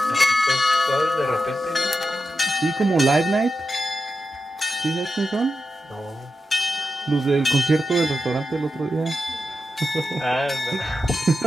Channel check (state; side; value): normal; both; correlation 0.89